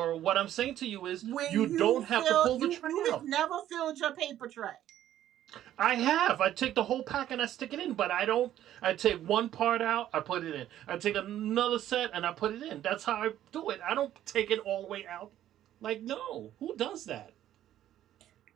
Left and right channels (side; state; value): left; quieter; 12.2 dB